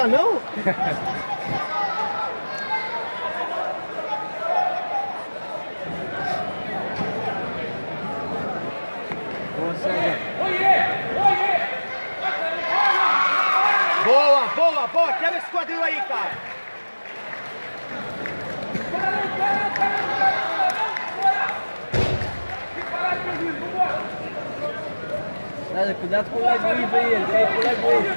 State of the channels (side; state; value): both; inverted; correlation -1.00